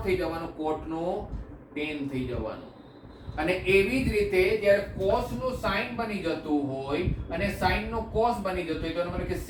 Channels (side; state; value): both; identical; correlation 1.00